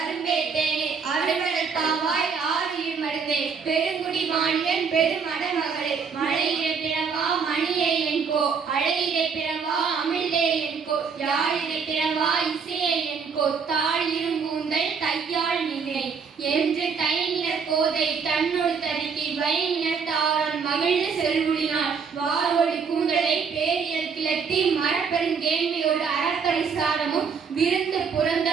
தேனே அருமடல் பாவாய் ஆறியில் மருந்தே பெருங்குடி வாணியன் பெருமட மகளே மழையிலே பிறவா மணியே என்கோ அழையிலே பிறவா அமிழ்தே என்கோ யாழிலே பிறவா இசையே என்கோ தாழ் இரும்பூந்தல் தையாள் நிலை என்று தைநிலர் கோதை தன்னோடு தருக்கி வைநிலர் தாரன் மகிழ்ந்து செல்வுளினாள் வாரோடி கூந்தலை பேரியல் கிளத்தி மரப்பெருங்கேண்மையோடு அறப்பரிசாரமும் விருந்து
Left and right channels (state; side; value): quieter; left; 5.9 dB